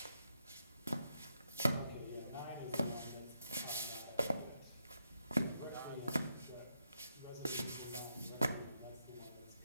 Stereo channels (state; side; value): inverted; both; correlation -0.81